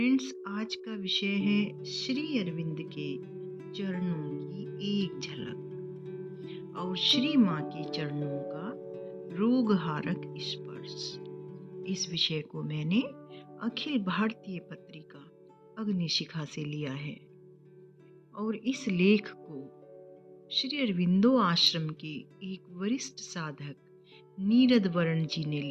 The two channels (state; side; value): identical; both; correlation 1.00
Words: आज का विषय है श्री अरविंद के चरणों की एक झलक और श्री माँ के चरणों का रोगहारक स्पर्श। इस विषय को मैंने अखिल भारतीय पत्रिका अग्निशिखा से लिया है और इस लेख को श्री अरविंदो आश्रम के एक वरिष्ठ साधक नीरद वरण जी ने